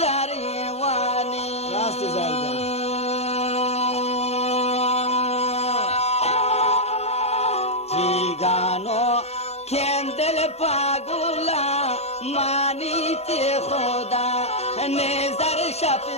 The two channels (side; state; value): right; late; 0.31 ms